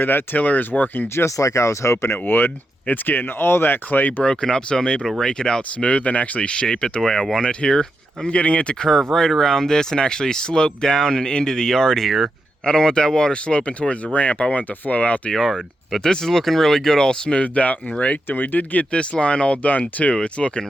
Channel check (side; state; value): both; normal; correlation 0.86